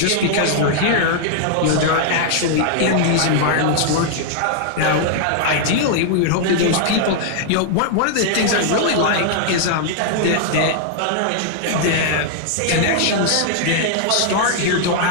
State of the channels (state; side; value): different; both; correlation -0.01